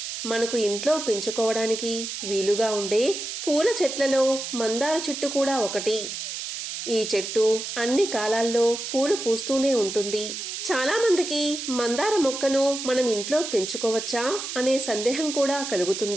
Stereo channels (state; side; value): noise; right; hiss, 6 dB below the sound